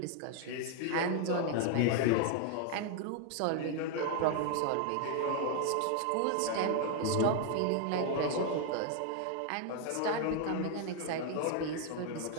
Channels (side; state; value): both; different; correlation 0.00